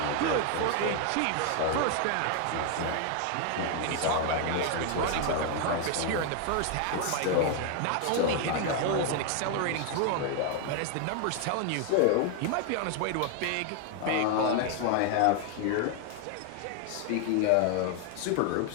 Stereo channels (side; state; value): both; different; correlation 0.00